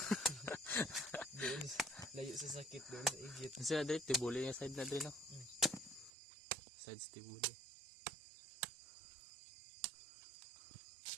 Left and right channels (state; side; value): drops out; left; at 6.1 s